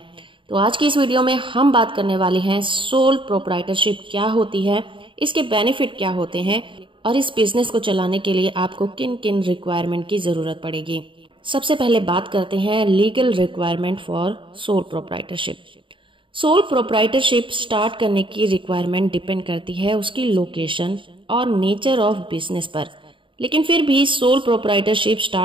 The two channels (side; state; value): left; late; 0.25 ms